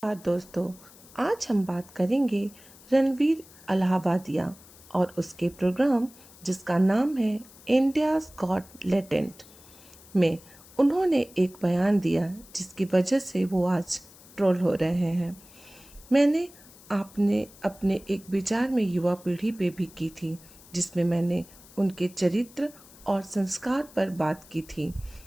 दोस्तों, आज हम बात करेंगे रणवीर अलाहाबादिया और उसके प्रोग्राम जिसका नाम है इंडियाज़ गॉट लेटेंट में उन्होंने एक बयान दिया जिसकी वजह से वो आज ट्रोल हो रहे हैं। मैंने आपने अपने एक विचार में युवा पीढ़ी पे भी की थी, जिसमें मैंने उनके चरित्र और संस्कार पर बात की थी,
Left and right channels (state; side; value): noise; left; hiss, 22 dB below the sound